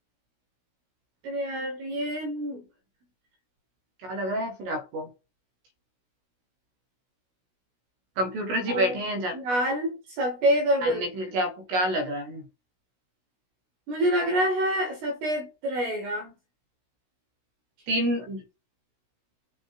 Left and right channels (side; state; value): left; late; 16 ms